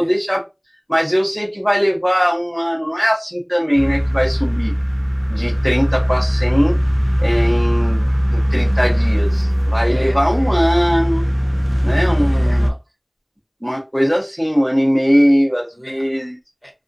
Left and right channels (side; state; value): both; identical; correlation 1.00